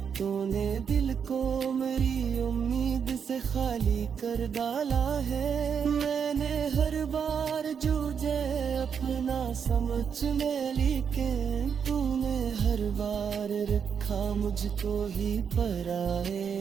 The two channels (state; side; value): quieter; left; 7.0 dB